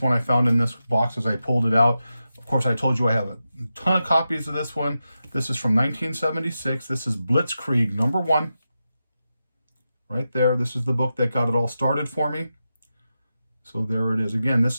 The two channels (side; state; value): both; inverted; correlation -0.90